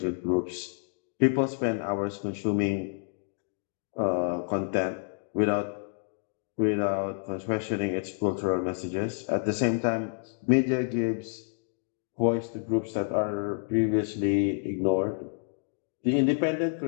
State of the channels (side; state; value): right; silent; digital silence